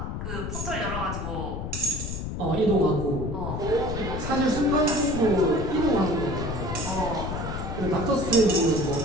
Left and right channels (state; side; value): noise; left; rumble, 5 dB below the sound